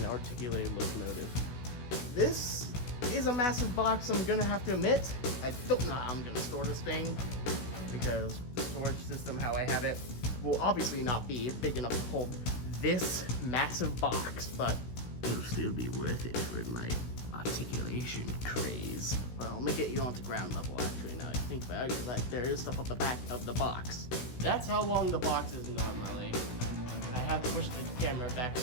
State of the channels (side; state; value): right; late; 16 ms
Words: articulated locomotive. This is a massive box, I'm gonna have to admit. I don't know how I'm gonna store this thing, because the storage system, how I have it, will obviously not be big enough to hold this massive box, but it'll still be worth it for my articulation craze. Well, I'm gonna get you onto ground level, actually, now that I think about it, because like, there is stuff on the back of the box. That's how long the box is normally. I have to push the camera back